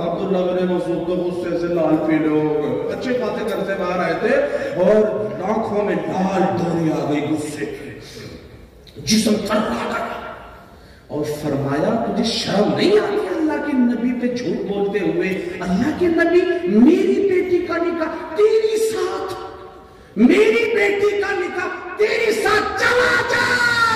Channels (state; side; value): identical; both; correlation 1.00